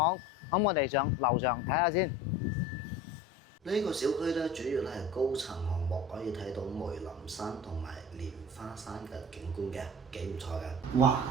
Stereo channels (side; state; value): both; normal; correlation 0.39